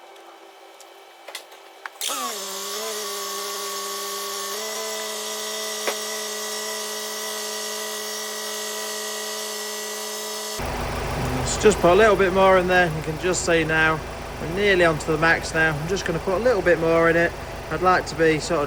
Just put a little bit more in there. You can just see now we're nearly onto the max now. I'm just going to put a little bit more in it. I'd like to be sort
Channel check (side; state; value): both; identical; correlation 1.00